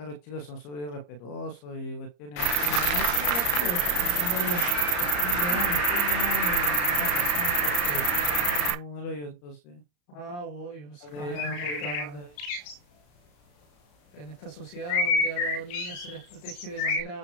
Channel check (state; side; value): late; right; 34 ms